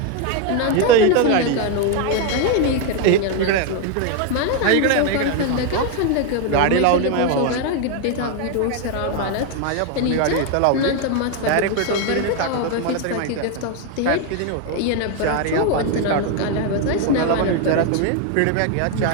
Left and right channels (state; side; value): different; both; correlation 0.01